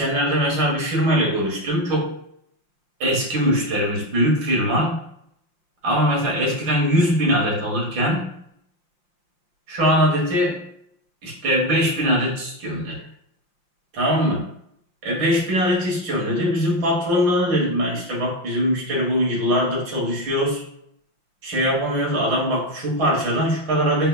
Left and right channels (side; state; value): left; late; 5.7 ms